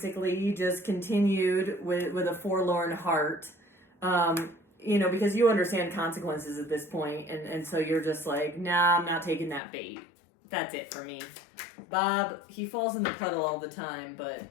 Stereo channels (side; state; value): right; drops out; at 9.6 s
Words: just continued with a forlorn heart, because you understand consequences at this point. And so you're just like, nah, I'm not taking that bait. That's it for me. Bob, he falls in the puddle all the time, but